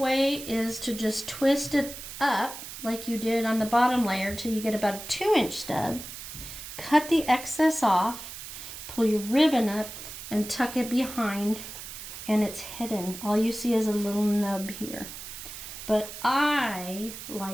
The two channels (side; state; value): right; noise; hiss, 11 dB below the sound